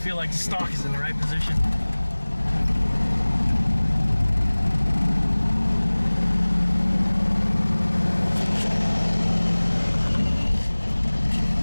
like the stock is in the right position.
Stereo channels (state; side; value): inverted; both; correlation -1.00